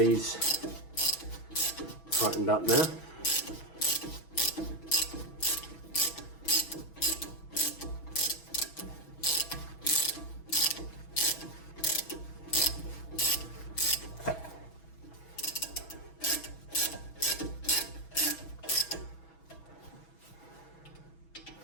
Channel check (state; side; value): late; right; 6.1 ms